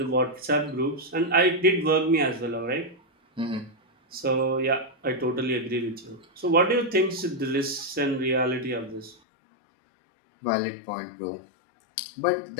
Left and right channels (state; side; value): drops out; right; at 9.2 s